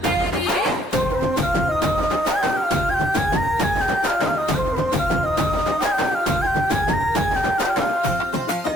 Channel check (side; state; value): both; normal; correlation 0.66